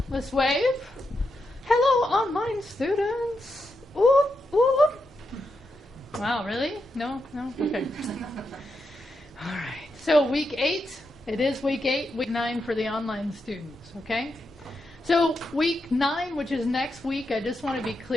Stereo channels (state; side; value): normal; both; correlation 0.85